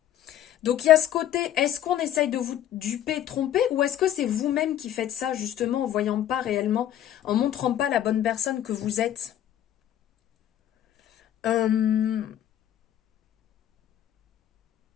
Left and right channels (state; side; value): quieter; right; 11.2 dB